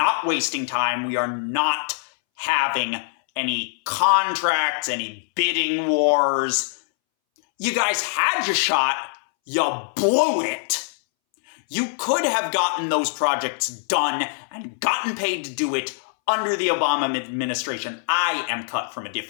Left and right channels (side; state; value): right; silent; 63 dB below the other